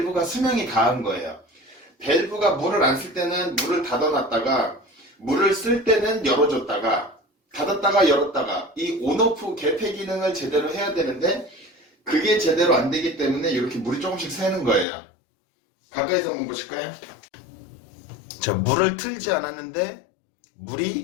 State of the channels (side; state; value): right; drops out; at 14.9 s